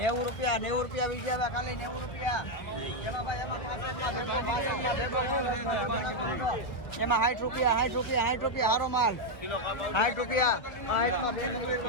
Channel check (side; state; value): right; late; 1.6 ms